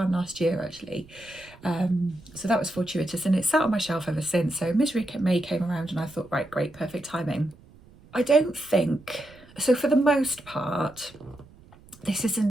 last year actually. So that was fortuitous, and it's sat on my shelf ever since. So Misery May came around and I thought, right, great, perfect timing. I don't think, so for the most part, this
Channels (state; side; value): noise; right; rumble, 24 dB below the sound